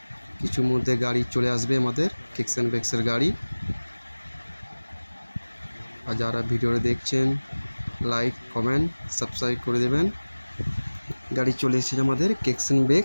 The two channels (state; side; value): inverted; both; correlation -1.00